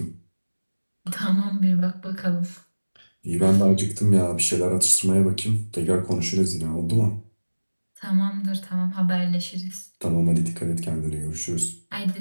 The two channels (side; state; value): both; inverted; correlation -1.00